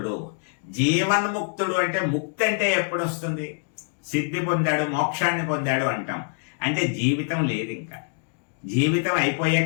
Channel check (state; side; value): silent; right; 62 dB below the other